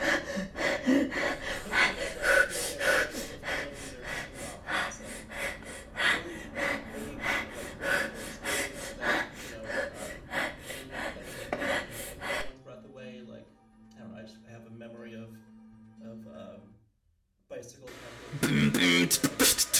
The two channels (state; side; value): identical; both; correlation 1.00